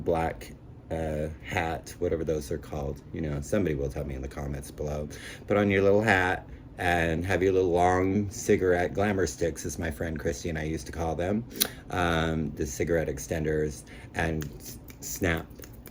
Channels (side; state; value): both; identical; correlation 1.00